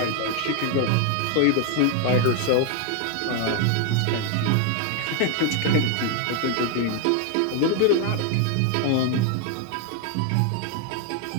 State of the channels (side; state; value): both; different; correlation 0.01